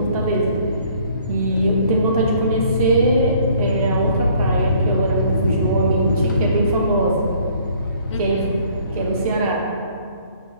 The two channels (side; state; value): both; inverted; correlation -0.59